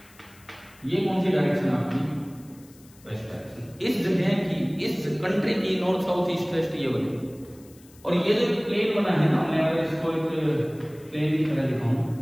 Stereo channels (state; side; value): noise; left; hiss, 26 dB below the sound